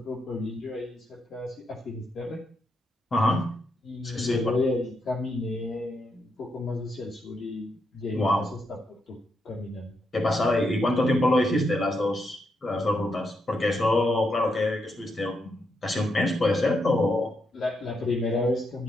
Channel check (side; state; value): both; normal; correlation 0.81